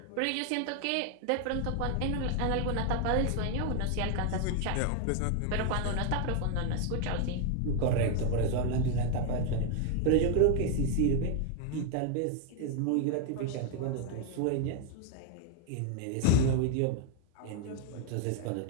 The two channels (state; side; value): different; both; correlation 0.00